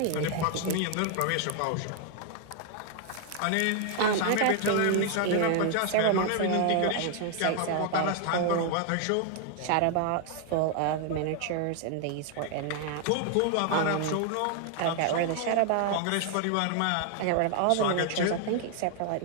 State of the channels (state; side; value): different; both; correlation 0.00